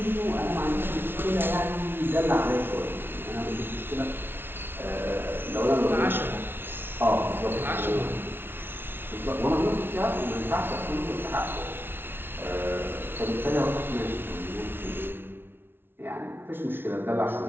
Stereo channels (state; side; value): late; left; 0.11 ms